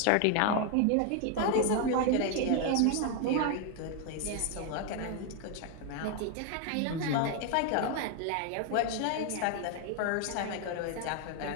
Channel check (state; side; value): different; both; correlation 0.01